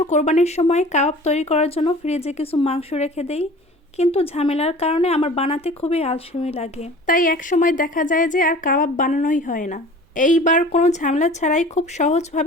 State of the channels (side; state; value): both; normal; correlation 0.43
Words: কোরবানির সময় কাবাব তৈরি করার জন্য ফ্রিজে কিছু মাংস রেখে দেই, কিন্তু ঝামেলার কারণে আমার বানাতে খুবই আলসেমি লাগে। তাই এক সময় দেখা যায় যে আর কাবাব বানানোই হয় না। এইবার কোনো ঝামেলা ছাড়াই খুব